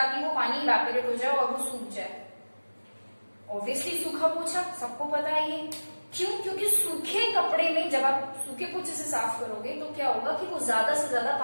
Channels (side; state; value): both; inverted; correlation -1.00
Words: वो पानी इवेपोरेट हो जाए और वो सूख जाए? ऑब्वियसली सूखा पोछा, सबको पता है ये। क्यों? क्योंकि सूखे कपड़े में जब आप सूखे पोछे से साफ करोगे तो क्या होगा कि वो ज्यादा से ज्यादा